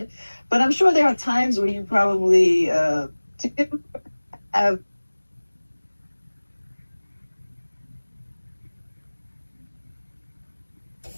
But I'm sure there are times where you probably have.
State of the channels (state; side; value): inverted; both; correlation -1.00